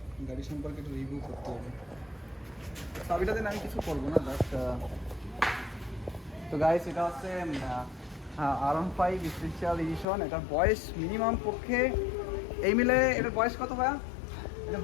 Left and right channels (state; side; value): drops out; right; at 10.1 s